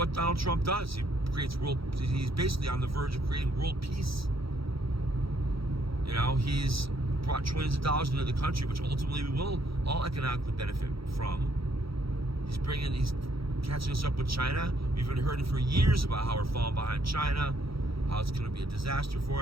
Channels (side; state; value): left; late; 0.75 ms